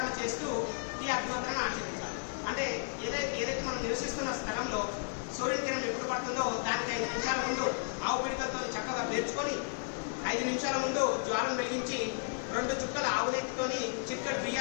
చేస్తూ ఈ అగ్నిహోత్రాన్ని ఆచరించాలి. అంటే ఏదైతే మనం నివసిస్తున్న స్థలంలో సూర్యుని కిరణం ఎప్పుడు పడుతుందో దానికి 5 నిమిషాల ముందు ఆవు పిడికలతో చక్కగా పేర్చుకొని 5 నిమిషాల ముందు జ్వాలను వెలిగించి 2 చుక్కల ఆవు నెయ్యితోని చిక్కటి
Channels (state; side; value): silent; right; digital silence